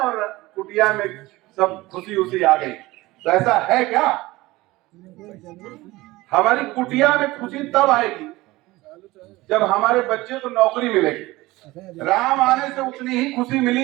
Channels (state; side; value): quieter; left; 19.6 dB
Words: कुटिया में सब खुशी उसी आ गई। तो ऐसा है क्या? हमारी कुटिया में खुशी तब आएगी जब हमारे बच्चे को नौकरी मिलेगी। राम आने से उतनी ही खुशी मिली